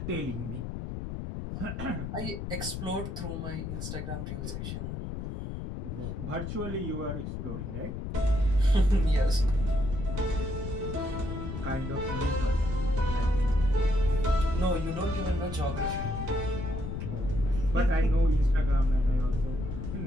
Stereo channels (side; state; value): left; noise; rumble, 5 dB below the sound